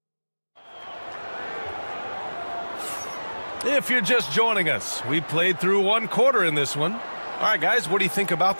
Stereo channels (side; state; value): both; inverted; correlation -1.00